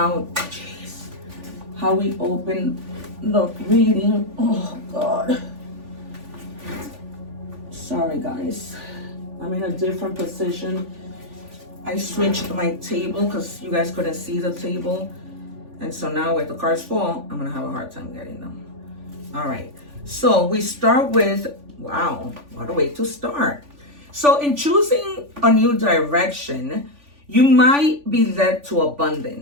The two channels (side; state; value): left; late; 3.5 ms